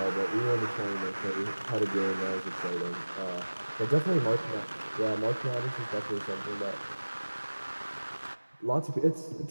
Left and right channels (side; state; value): both; inverted; correlation -1.00